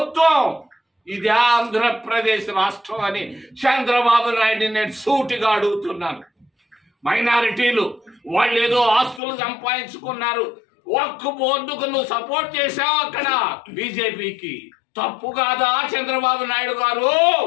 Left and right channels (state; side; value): drops out; right; at 9.2 s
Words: ఇదే ఆంధ్రప్రదేశ్ రాష్ట్రం అని చంద్రబాబు నాయుడు నేను సూటిగా అడుగుతున్నాను. మైనారిటీలు వాళ్ళు ఏదో ఆస్తులు సంపాదించుకున్నారు, ఒక్క బోర్డుకు నువ్వు సపోర్ట్ చేశావు అక్కడ బీజేపీకి. తప్పు కాదా చంద్రబాబు నాయుడు గారు?